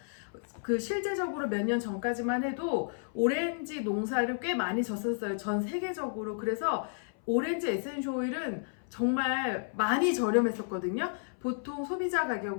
실제적으로 몇 년 전까지만 해도 오렌지 농사를 꽤 많이 졌었어요. 전 세계적으로. 그래서 오렌지 에센셜 오일은 정말 많이 저렴했었거든요. 보통 소비자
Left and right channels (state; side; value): silent; right; 57 dB below the other